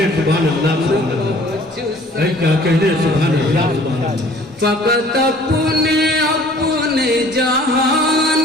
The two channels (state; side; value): normal; both; correlation 0.52